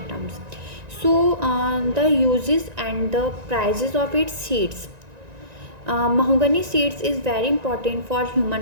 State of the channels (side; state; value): left; late; 1.9 ms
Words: So the uses and the prices of its seeds. Mahogany seeds is very important for